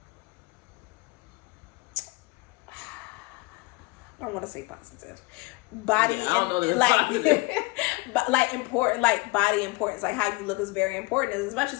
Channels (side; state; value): right; quieter; 23.9 dB